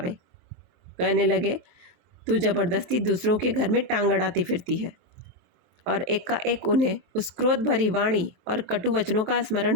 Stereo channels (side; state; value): left; late; 23 ms